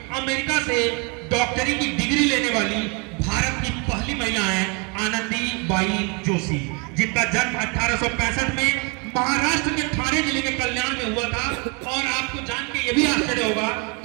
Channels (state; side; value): quieter; left; 32.3 dB